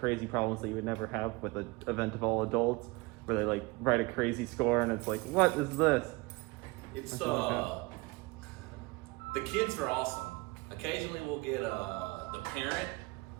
problems that you would never have with an event of all adults, where they like write a crazy score and it's like, what is this? It's the kids are awesome. Occasionally we'll get the parent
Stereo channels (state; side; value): quieter; left; 24.6 dB